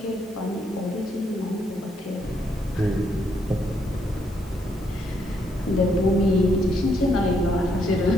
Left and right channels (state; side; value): normal; both; correlation 0.74